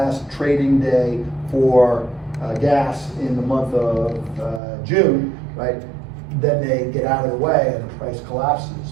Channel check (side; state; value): left; drops out; at 4.6 s